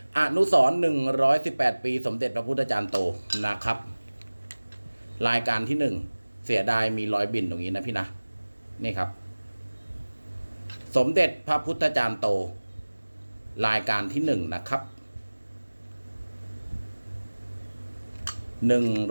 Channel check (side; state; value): both; inverted; correlation -1.00